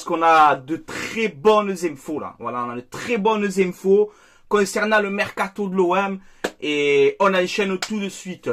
qu'on a de très bonnes infos là. Voilà, on a de très bonnes infos concernant le mercato de l'OM et on enchaîne tout de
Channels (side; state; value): both; identical; correlation 1.00